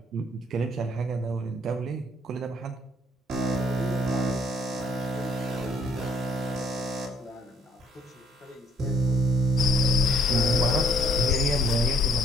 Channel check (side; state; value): both; normal; correlation 0.64